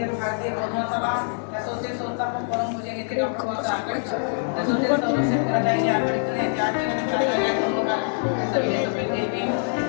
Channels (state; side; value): silent; right; 58 dB below the other